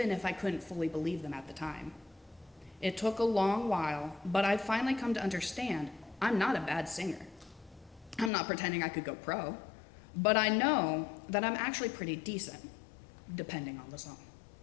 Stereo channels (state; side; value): drops out; right; at 8.3 s